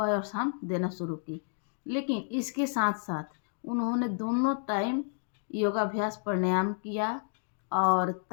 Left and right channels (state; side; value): silent; right; 57 dB below the other